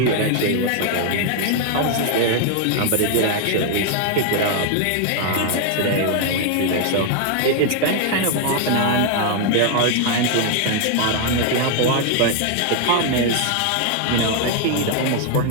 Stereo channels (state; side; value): different; both; correlation 0.01